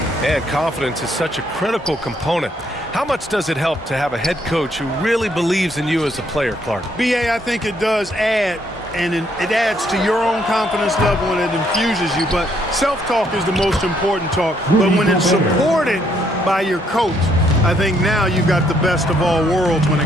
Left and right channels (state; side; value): normal; both; correlation 0.71